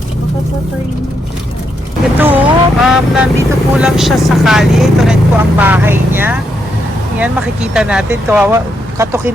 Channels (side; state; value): both; normal; correlation 0.79